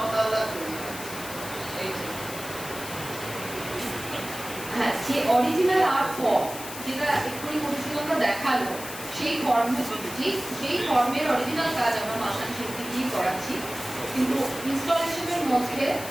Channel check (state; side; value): noise; left; hiss, 11 dB below the sound